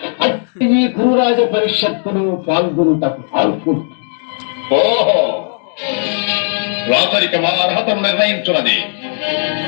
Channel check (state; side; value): silent; right; digital silence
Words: అట్టి ఈ గురురాజ పరిషత్తులు పాల్గొనుటకు పాల్గొను. ఓహో, రాతరిక మా అర్హతను నిర్ణయించున్నది.